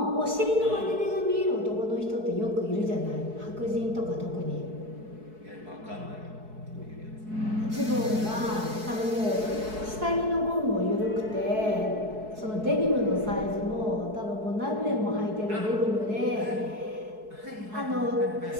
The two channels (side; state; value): left; late; 4.7 ms